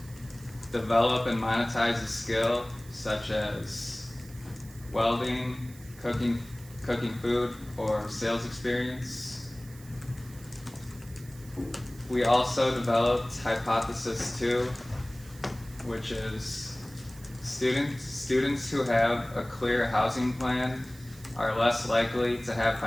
develop and monetize a skill such as welding, cooking food, or sales experience. We also developed Hypothesis 2, which is students who have a clear housing plan are less likely to have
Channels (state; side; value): noise; right; hiss, 21 dB below the sound